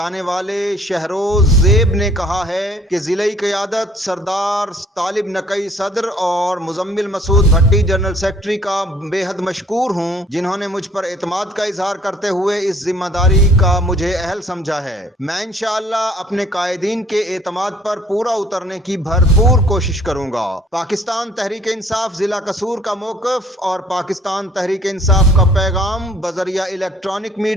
والے شہروز زیب نے کہا ہے کہ ضلعی قیادت سردار طالب نقی صدر اور مزمل مسعود بھٹی جنرل سیکرٹری کا بے حد مشکور ہوں، جنہوں نے مجھ پر اعتماد کا اظہار کرتے ہوئے اس ذمہ داری کا مجھے اہل سمجھا ہے۔ میں انشاءاللہ اپنے قائدین کے اعتماد پر پورا اترنے کی بھرپور کوشش کروں گا۔ پاکستان تحریک انصاف ضلع قصور کا موقف اور پاکستان تحریک انصاف کا پیغام بذریعہ الیکٹرانک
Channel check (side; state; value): both; normal; correlation 0.58